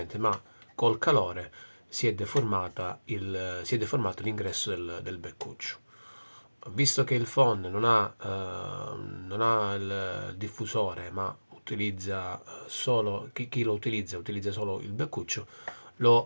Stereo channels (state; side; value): inverted; both; correlation -1.00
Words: ma col calore si è deformato l'ingresso del beccuccio. Visto che il phon non ha il diffusore, ma utilizza solo, chi lo utilizza solo il beccuccio,